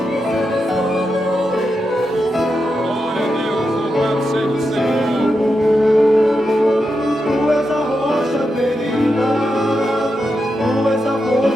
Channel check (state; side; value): normal; both; correlation 0.87